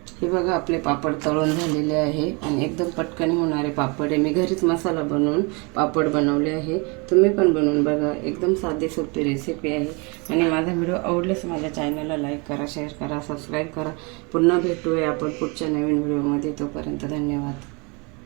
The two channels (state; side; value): quieter; left; 30.4 dB